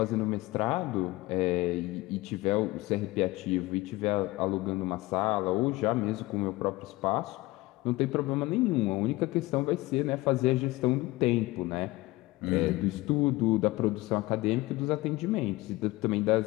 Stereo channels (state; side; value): quieter; right; 20.2 dB